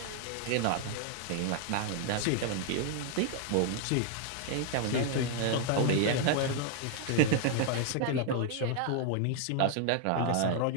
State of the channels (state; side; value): different; both; correlation 0.00